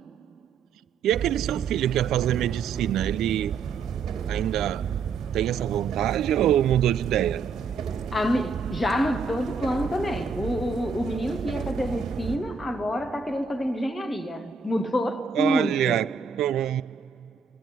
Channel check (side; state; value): left; quieter; 5.3 dB